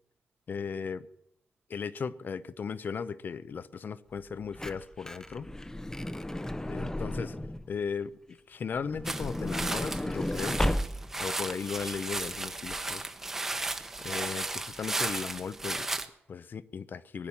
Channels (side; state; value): both; normal; correlation 0.82